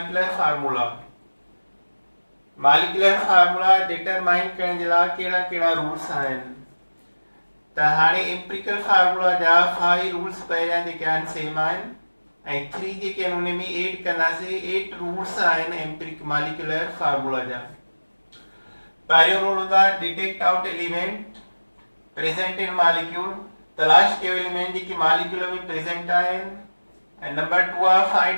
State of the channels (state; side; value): inverted; both; correlation -1.00